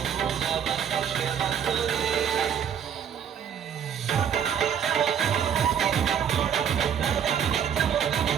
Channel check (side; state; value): left; quieter; 8.3 dB